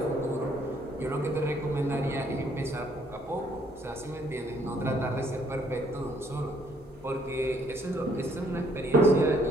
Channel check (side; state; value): both; normal; correlation 0.66